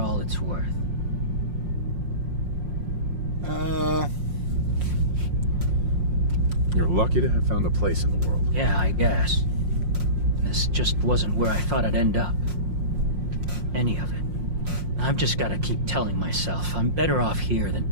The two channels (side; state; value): left; late; 5.6 ms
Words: it's worth. You're lucky to have found a place in the world. Yeah, I guess. This just wasn't where I thought I'd end up. Any of it. I've just gotta keep telling myself I'm better off here than